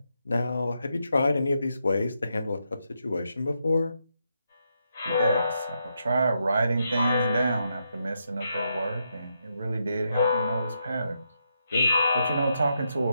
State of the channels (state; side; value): inverted; both; correlation -0.82